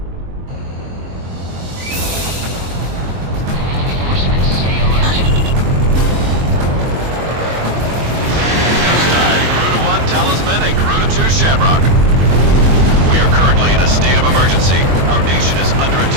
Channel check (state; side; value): late; left; 22 ms